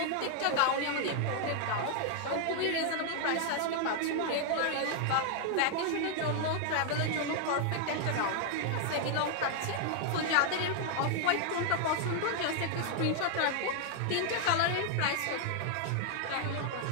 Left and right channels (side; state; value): both; different; correlation 0.00